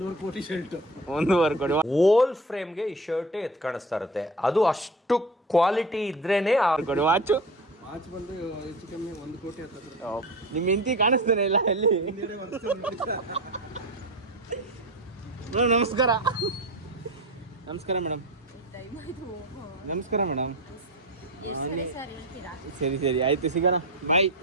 ಕೋಟಿ ಶರ್ಟ್. 1.5 ಕೋಟಿ. ಓಲ್ ಫ್ರೇಮ್ಗೆ ಈ ಶರ್ಟ್ ಎತ್ ಕಾಣಿಸ್ತಾ ಇರುತ್ತೆ. ಅದು ಅಷ್ಟು ಕ್ವಾಲಿಟಿ ಇದ್ರೇನೆ ಕೊಡಿ. ವಾಚು ವಾಚ್ ಬಂದು ಹೆಚ್ಚು ಕಮ್ಮಿ 1 ಕೋಟಿ ಹತ್ತಿರ. ನಿಮ್ಮ ಹೆಂಡತಿ ಕಾಣಿಸ್ತಾನೆ ಇಲ್ಲ ಎಲ್ಲಿ? ನಮಸ್ಕಾರ. ನಮಸ್ಕಾರ ಮೇಡಮ್. ನಮಸ್ಕಾರ ಮೇಡಮ್. ಸರಿ ಸರಿ ಆಯ್ತು, ಸಿಗೋಣ. ಬಾಯ್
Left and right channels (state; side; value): normal; both; correlation 0.29